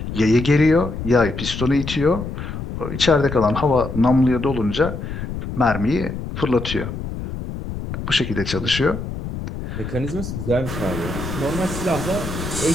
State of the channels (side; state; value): left; noise; rumble, 7 dB below the sound